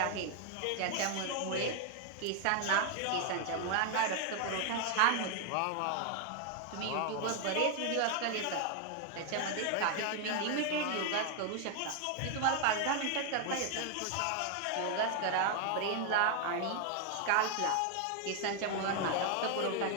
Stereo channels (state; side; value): different; both; correlation 0.00